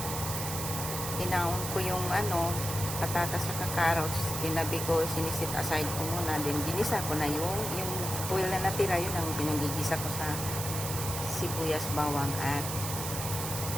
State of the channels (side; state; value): right; noise; hiss, 5 dB below the sound